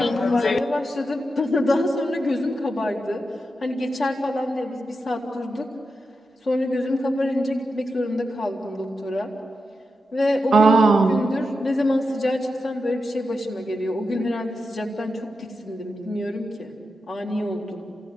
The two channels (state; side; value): normal; both; correlation 0.88